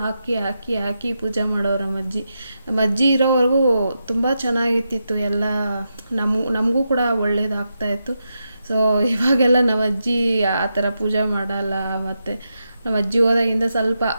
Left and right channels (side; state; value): both; inverted; correlation -0.86